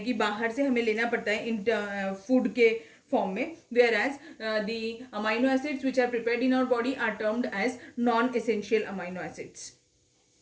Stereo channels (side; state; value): both; identical; correlation 1.00